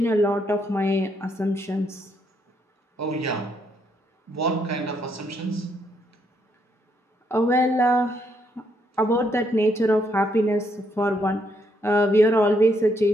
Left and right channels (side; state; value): both; normal; correlation 0.74